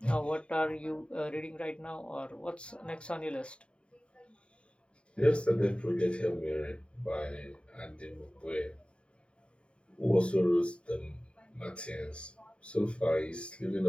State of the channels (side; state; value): right; late; 0.056 ms